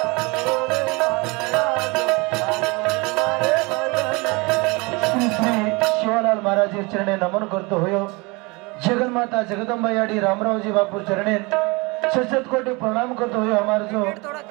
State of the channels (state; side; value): quieter; left; 26.7 dB